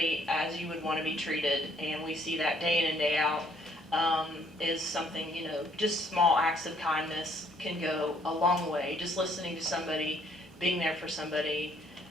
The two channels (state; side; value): normal; both; correlation 0.65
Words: as you would want to be treated, and we see that day in and day out, is something, you know, just small acts of kindness can go a long way. Just listening to somebody, being there for somebody,